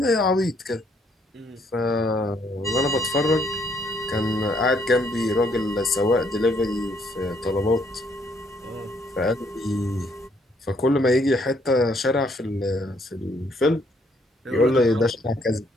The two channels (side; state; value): both; normal; correlation 0.69